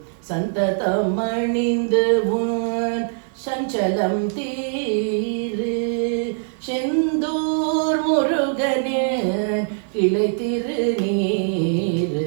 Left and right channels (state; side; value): silent; left; digital silence